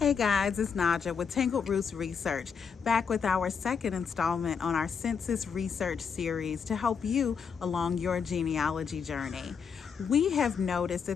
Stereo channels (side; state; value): right; quieter; 6.3 dB